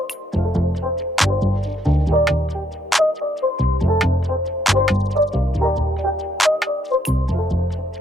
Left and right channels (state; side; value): normal; both; correlation 0.72